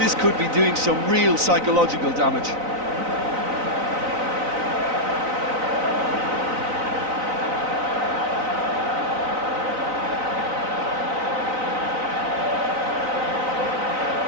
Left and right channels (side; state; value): left; late; 3.9 ms